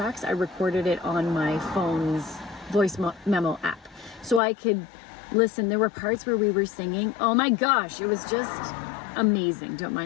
I recorded it on my phone's voice memo app, so I could listen. There were parts where we were singing. Oh my gosh, it was just amazing. Don't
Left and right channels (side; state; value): right; drops out; at 4.4 s